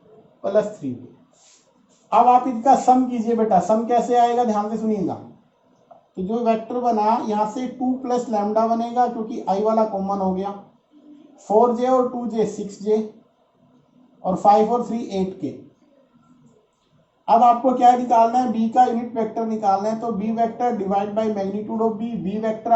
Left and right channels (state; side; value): identical; both; correlation 1.00